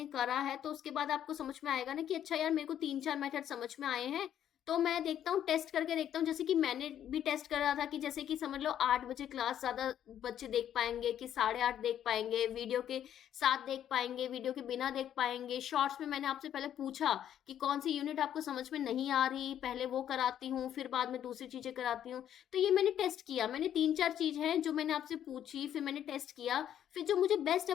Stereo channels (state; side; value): quieter; right; 10.3 dB